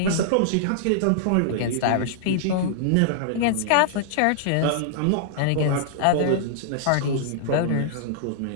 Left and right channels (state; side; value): different; both; correlation -0.01